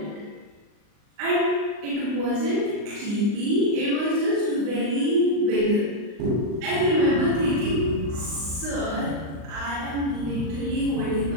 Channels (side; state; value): left; late; 39 ms